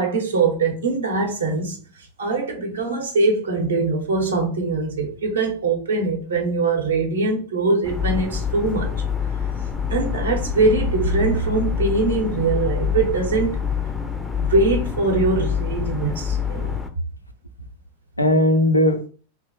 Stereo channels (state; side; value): normal; both; correlation -0.04